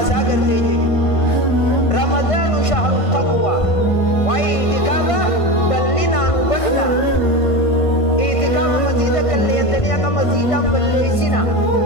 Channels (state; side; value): late; right; 1.5 ms